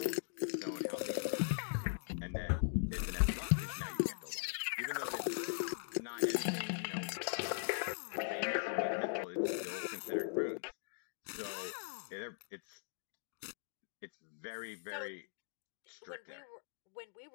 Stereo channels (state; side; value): silent; right; digital silence